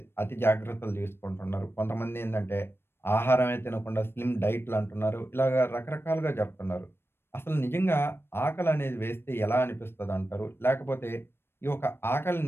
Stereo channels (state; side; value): late; right; 0.11 ms